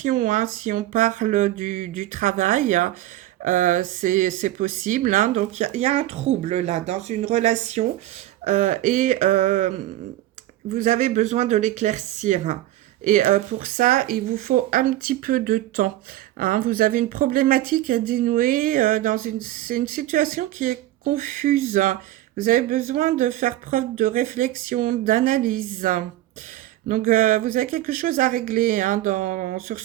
hein, si on parle du travail. C'est possible. Hein. Donc, il y a un trouble là dans une relation et vous avez besoin de l'éclaircir. Et pour ça, il vous faut un petit peu de temps. Hein. Vous avez une problématique à dénouer c'est une situation qui est confuse. Vous avez besoin de faire preuve de réflexion, d'analyse. Donc, vous avez quelque chose à régler hein, sur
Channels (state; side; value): quieter; left; 14.9 dB